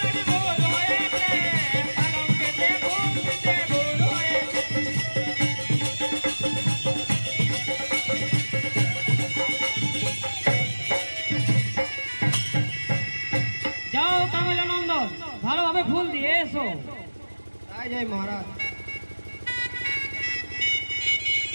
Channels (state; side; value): inverted; both; correlation -1.00